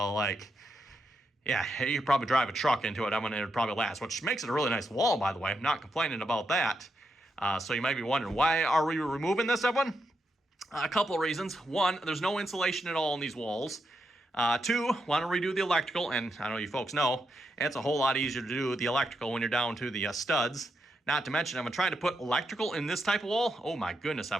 you could probably drive a truck into it. It would probably last, which makes it a really nice wall, by the way. I'm not complaining about that. So you might be wondering, why are we removing this, everyone? A couple of reasons. One, there's no insulation at all in these walls. Two, want to redo the electrical, and I know you folks know, it's a whole lot easier to do the electrical when you're down to the studs. Not to mention, I'm trying to put electrical in this type of wall. Oh my goodness,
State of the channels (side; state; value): both; normal; correlation 0.83